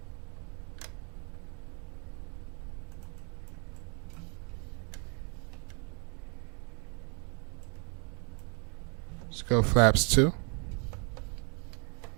Let's go flaps 2.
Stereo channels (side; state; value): left; quieter; 36.4 dB